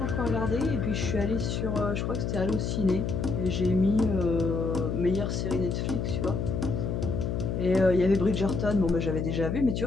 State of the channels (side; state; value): left; noise; hum, 1 dB below the sound